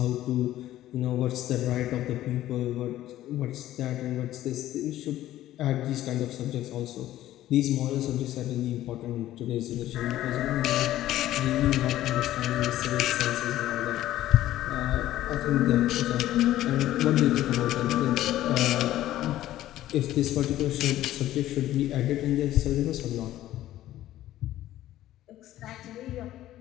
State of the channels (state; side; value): quieter; right; 14.0 dB